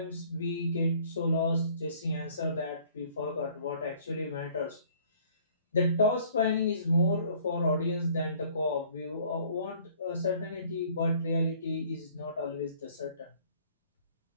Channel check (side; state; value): both; inverted; correlation -0.56